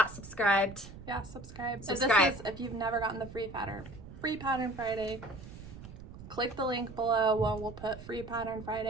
subscribed, subscribe. Subscribe. If you've never gotten the Free Pattern Friday, click the link below. We'll put Free Pattern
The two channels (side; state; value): right; noise; rumble, 14 dB below the sound